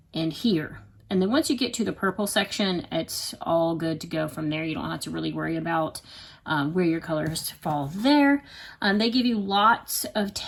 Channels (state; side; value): identical; both; correlation 1.00